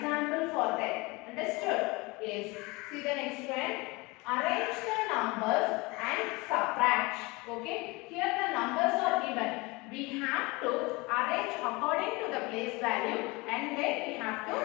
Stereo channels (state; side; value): quieter; right; 24.7 dB